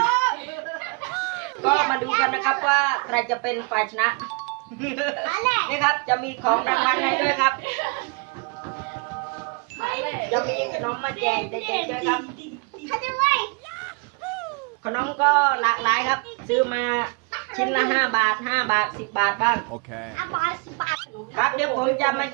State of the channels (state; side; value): quieter; left; 32.6 dB